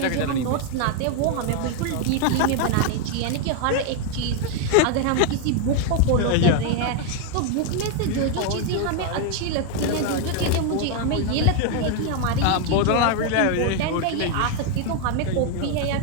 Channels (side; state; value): both; different; correlation 0.01